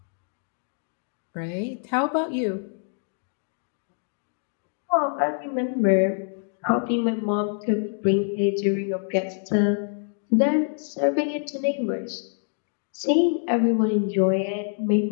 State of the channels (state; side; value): silent; right; 61 dB below the other